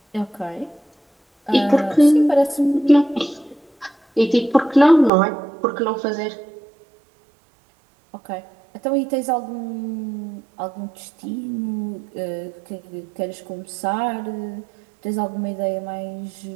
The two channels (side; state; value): left; drops out; at 5.1 s